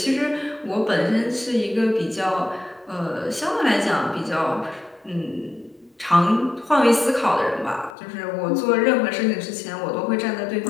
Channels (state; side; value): drops out; right; at 8.0 s